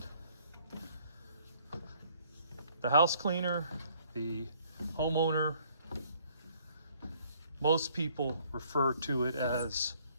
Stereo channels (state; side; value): inverted; both; correlation -0.62